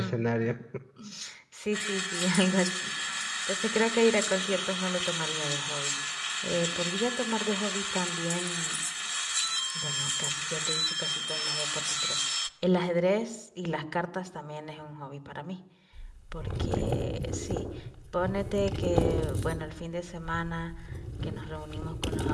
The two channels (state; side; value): identical; both; correlation 1.00